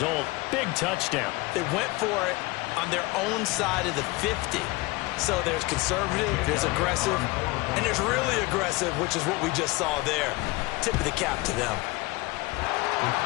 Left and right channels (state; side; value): quieter; right; 22.8 dB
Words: Big touchdown. They went for it on their own side of the 50. So there's conservative, there's aggressive, and there's really aggressive, which is what we just saw there. Tip of the cap to them.